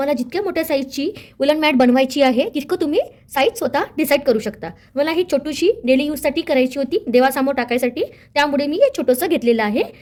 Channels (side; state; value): both; identical; correlation 1.00